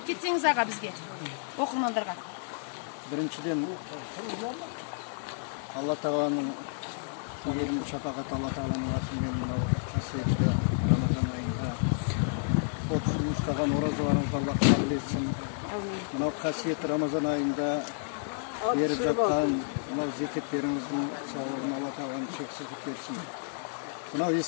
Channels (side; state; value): right; silent; 57 dB below the other